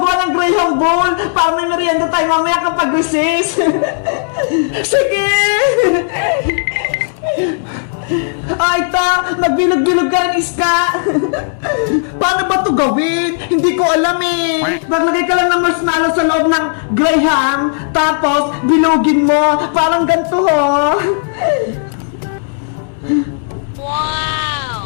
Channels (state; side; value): silent; right; digital silence